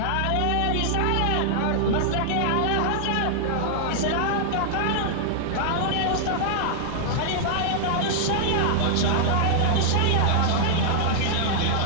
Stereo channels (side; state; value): both; different; correlation -0.01